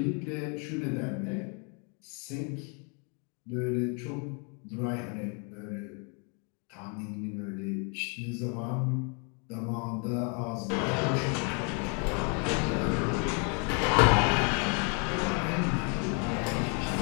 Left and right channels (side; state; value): right; quieter; 36.8 dB